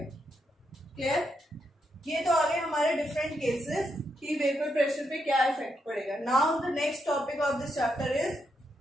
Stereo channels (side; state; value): both; normal; correlation 0.81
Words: क्लियर? ये तो आगे हमारे डिफरेंट केसेस कि वेपर प्रेशर पे क्या इफेक्ट पड़ेगा। Now the next topic of this chapter is